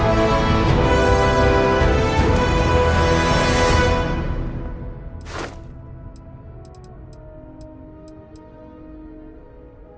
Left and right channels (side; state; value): both; identical; correlation 1.00